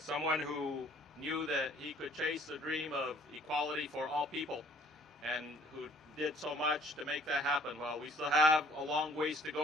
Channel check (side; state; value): both; normal; correlation 0.57